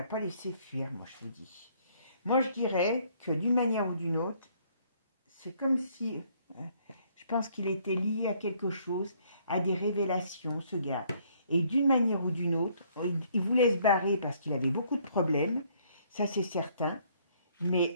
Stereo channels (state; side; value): inverted; both; correlation -0.64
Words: pas laissé fuir, moi je vous dis. Moi je dirais que d'une manière ou d'une autre, c'est comme si... je pense qu'il était lié à quelque chose, à des révélations, ce gars. Et d'une manière ou d'une autre, il voulait se barrer parce qu'il avait beaucoup de problèmes. Ça, c'est certain.